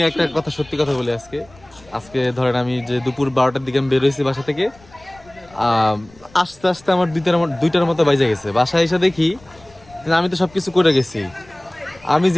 একটা কথা, সত্যি কথা বলি, আজকে ধরেন আমি যে দুপুর 12টার দিকে আমি বের হয়েছি বাসা থেকে, আস্তে আস্তে আমার দুইটার মতো বাইজে গেছে। বাসায় এসে দেখি আমি তো সবকিছু করে গেছি, আমি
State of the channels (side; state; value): left; noise; rumble, 26 dB below the sound